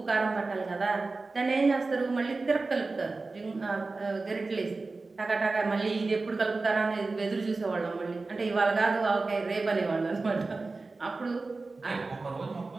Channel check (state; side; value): quieter; left; 3.6 dB